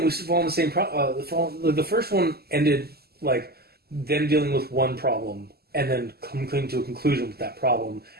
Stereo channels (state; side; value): late; left; 0.46 ms